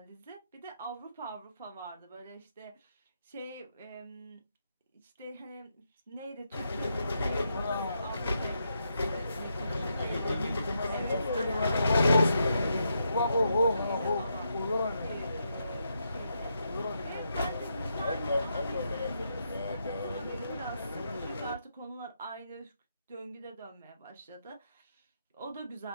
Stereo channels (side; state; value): both; inverted; correlation -0.81